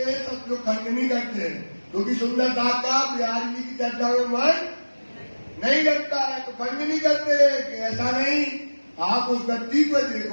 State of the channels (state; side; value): inverted; both; correlation -1.00